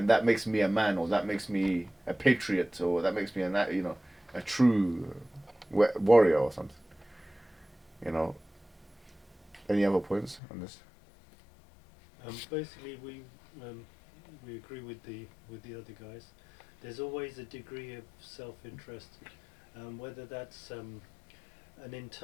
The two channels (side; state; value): right; drops out; at 10.4 s